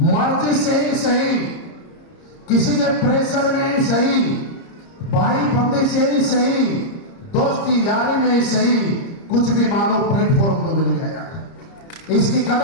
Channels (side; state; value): right; late; 30 ms